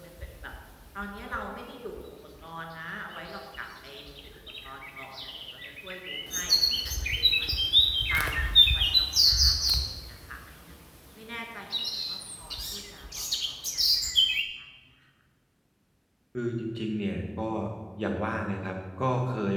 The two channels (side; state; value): both; identical; correlation 1.00